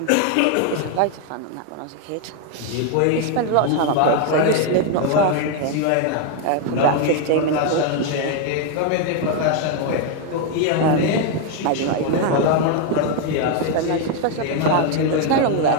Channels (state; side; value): different; both; correlation 0.01